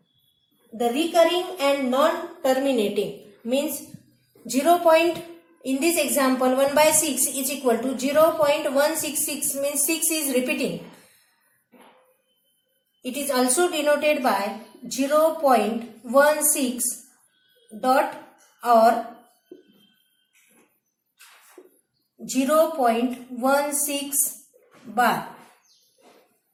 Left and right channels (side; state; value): both; identical; correlation 1.00